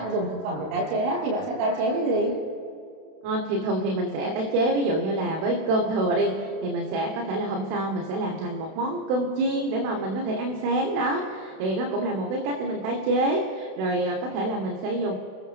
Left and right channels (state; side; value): late; left; 32 ms